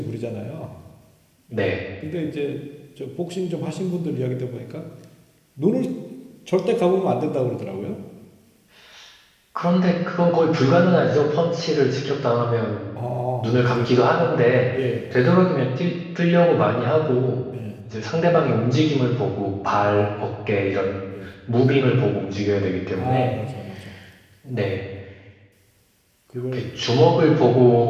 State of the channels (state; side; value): identical; both; correlation 1.00